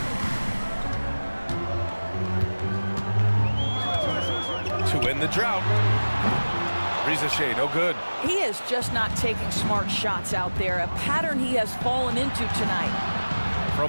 To win the drought. Risa Shea, no good. He is just not taking smart shots out there, a pattern he has fallen into tonight.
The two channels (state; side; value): inverted; both; correlation -1.00